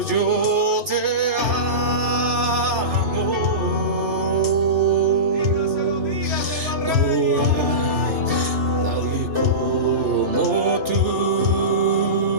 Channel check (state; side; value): late; left; 3.3 ms